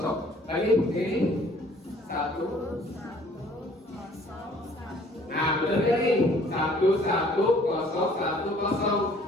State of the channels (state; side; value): normal; both; correlation 0.57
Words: Lagi ini 1. Nah, betul ya nih. 1 1 0 1